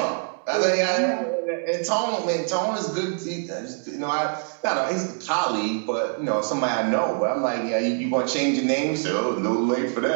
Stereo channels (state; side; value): silent; left; 55 dB below the other